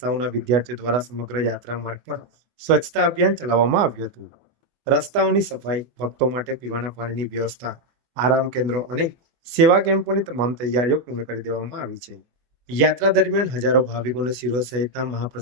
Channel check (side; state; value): left; late; 24 ms